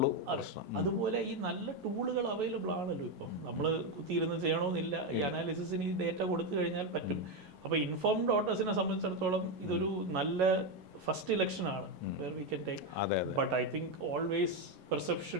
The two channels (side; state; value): left; late; 11 ms